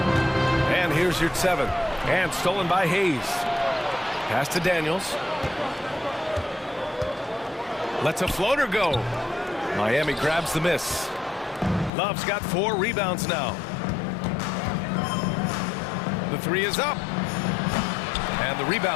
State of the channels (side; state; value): right; drops out; at 11.9 s